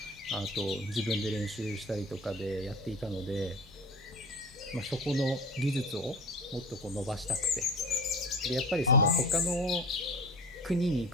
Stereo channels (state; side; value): normal; both; correlation 0.36